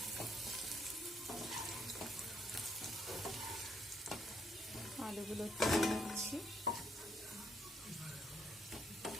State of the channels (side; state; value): both; normal; correlation 0.72